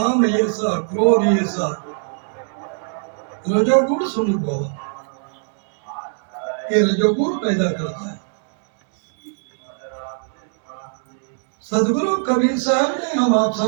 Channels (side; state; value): left; silent; digital silence